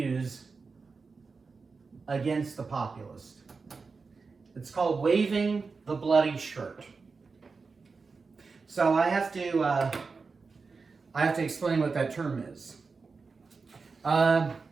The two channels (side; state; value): left; quieter; 4.6 dB